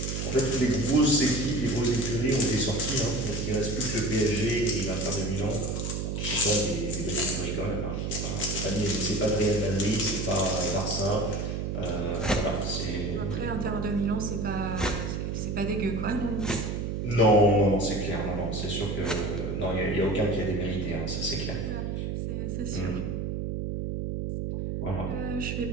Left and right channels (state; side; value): noise; right; hum, 2 dB below the sound